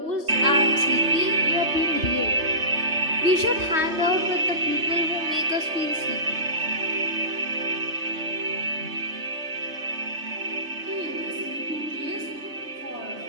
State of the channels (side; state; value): left; late; 3.3 ms